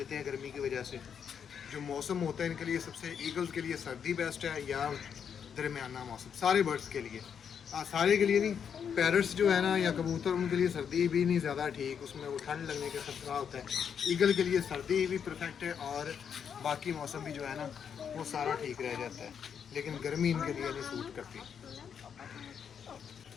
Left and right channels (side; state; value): right; quieter; 7.5 dB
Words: हैं गर्मी की वजह से। जो मौसम होता है इनके लिए सबसे, ईगल्स के लिए सर्दी बेस्ट है या दरमियाना मौसम, सारे बर्ड्स के लिए, सारे के लिए नहीं। पैरट्स जो है ना या कबूतर, उनके लिए सर्दी भी नहीं ज़्यादा ठीक, उसमें वो ठंड लगने का खतरा होता है। ईगल के लिए सर्दी भी परफेक्ट है और बाकी मौसम भी जो है ना वो सारा ठीक रह जाता है, लेकिन गर्मी इनके लिए नहीं सूट करती।